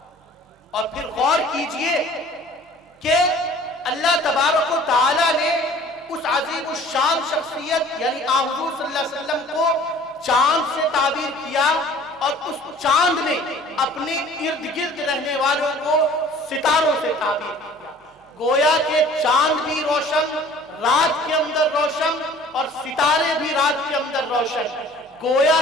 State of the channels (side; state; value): both; normal; correlation 0.49